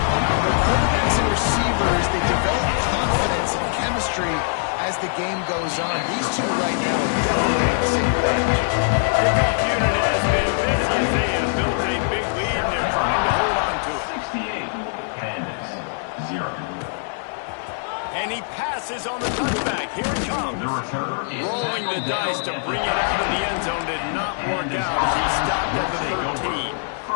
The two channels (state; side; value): silent; right; 64 dB below the other